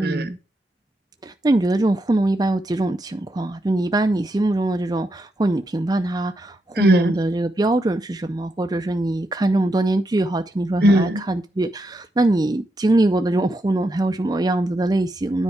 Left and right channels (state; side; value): normal; both; correlation 0.83